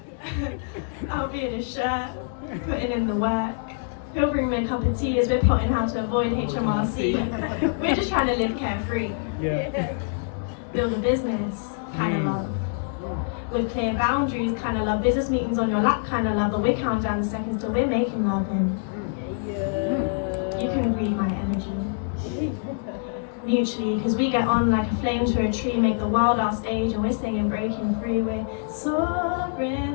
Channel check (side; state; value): right; silent; digital silence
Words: I'll be in his shirt, putting in the work. He'll bring me a cup of tea as we're plotting how to avoid HMRC. We're just trying to live carefree. Yeah. Build a business, kind of love. With clear boundaries, kind of love. Business meetings on your lap, kind of love. But we're counting down the seconds till we're making love. And you can read my energy. Mutually, because we get on like a flame to a tree, make the world our stage, and we're singing breaking free. We're